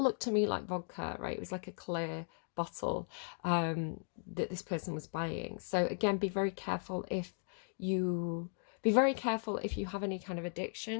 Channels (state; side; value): silent; right; digital silence